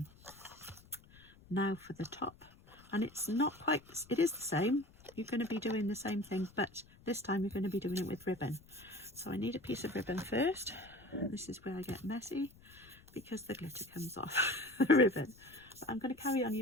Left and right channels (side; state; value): left; noise; rumble, 24 dB below the sound